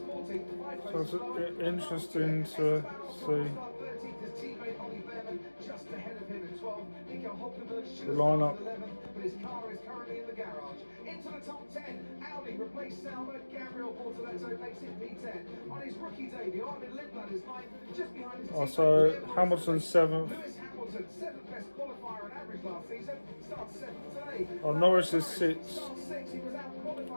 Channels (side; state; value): both; inverted; correlation -1.00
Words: 5 places So lower. it's interesting to see. 13th, his teammate Ollie Behrman just ahead of him in 12th. Nico Hulkenberg should The have lineup. started 11th, but his car is currently in the garage. Into the top 10, Audi replaced Sauber. Gabriel Bortoletto makes it P10. On his rookie debut, Armin Lindblad is 9th, just behind his teammate So Guillermo Hamilton Rossi. 7th. Lewis Hamilton, 7th best qualifier on average last season, starts 7th today. Norris is 6th. Starts 6th, he was